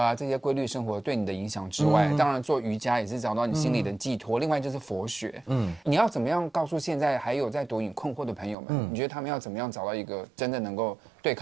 这些规律生活对你的影响之外，当然做瑜伽也是找到你心里的寄托。另外就是佛学，你要怎么样告诉现在还有在毒瘾困惑的朋友们？你觉得他们要怎么样找到一个真的能够对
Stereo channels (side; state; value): left; drops out; at 8.6 s